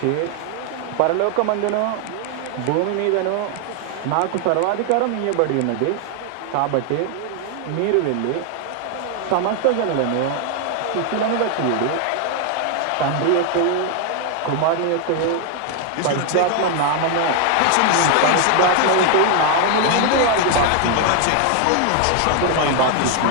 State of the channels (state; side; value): different; both; correlation 0.00